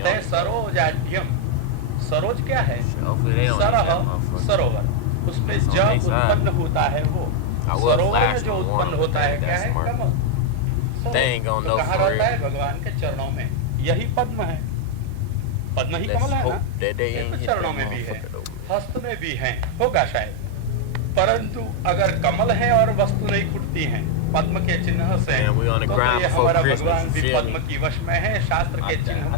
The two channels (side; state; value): both; different; correlation 0.00